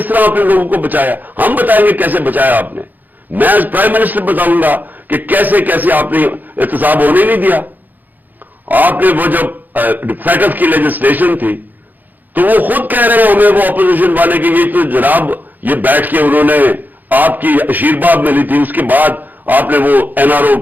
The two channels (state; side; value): late; left; 0.085 ms